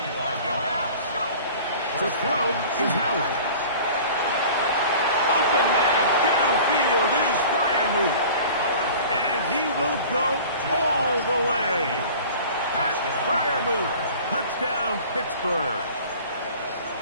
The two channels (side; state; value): both; inverted; correlation -0.43